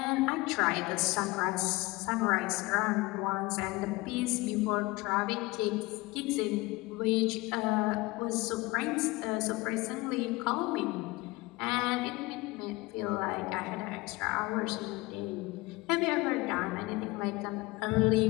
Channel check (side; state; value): right; quieter; 22.1 dB